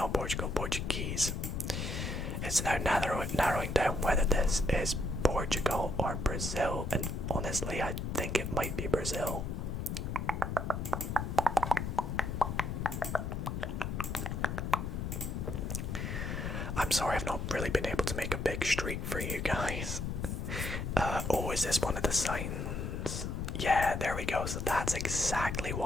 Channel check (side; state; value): left; noise; rumble, 3 dB below the sound